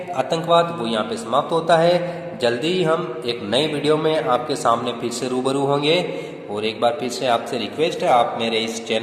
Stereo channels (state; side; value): identical; both; correlation 1.00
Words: आतंकवाद, वो यहाँ पे समाप्त होता है। जल्दी ही हम एक नए वीडियो में आपके सामने फिर से रूबरू होंगे, और एक बार फिर से आपसे रिक्वेस्ट है, आप मेरे इस